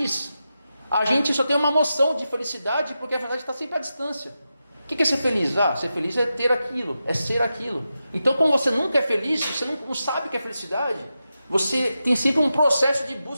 a gente só tem uma noção de felicidade, porque a felicidade está sempre à distância. O que é ser feliz? Ser feliz é ter aquilo, é ser aquilo. Então, como você nunca é feliz, você não sabe o que é felicidade, você tem sempre um processo de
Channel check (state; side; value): inverted; both; correlation -0.90